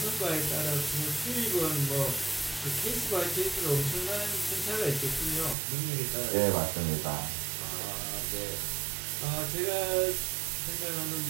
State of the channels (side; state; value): left; drops out; at 5.6 s